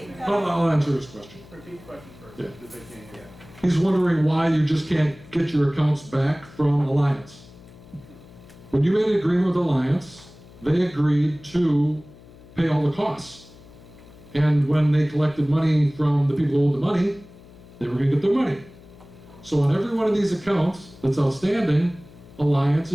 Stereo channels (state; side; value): noise; left; hum, 22 dB below the sound